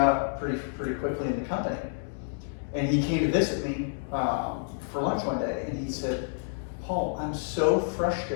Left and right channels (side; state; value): right; silent; digital silence